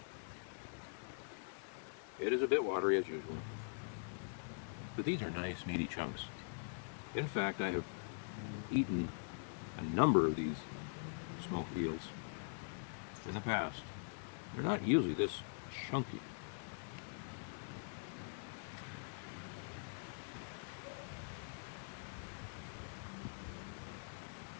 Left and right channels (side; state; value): right; silent; digital silence